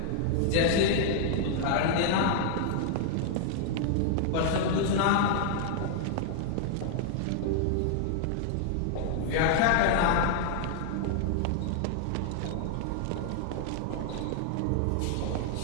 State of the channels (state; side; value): different; both; correlation 0.00